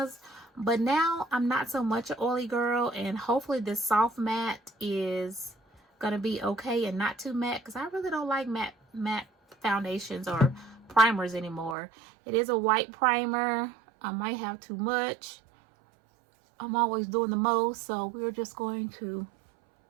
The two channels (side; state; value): left; drops out; at 11.8 s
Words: But now I'm not so much an oily girl, and hopefully this soft matte is gonna be okay and not too matte, because I really don't like matte foundations or primers anymore. It is a white primer. I might have too much. I'm always doing the most, so we're just going to